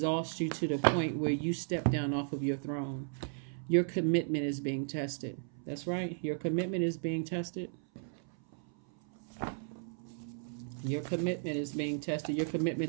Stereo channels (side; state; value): left; silent; 55 dB below the other